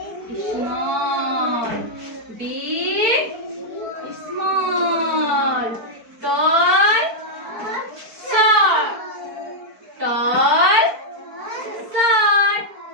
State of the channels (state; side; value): late; left; 4.5 ms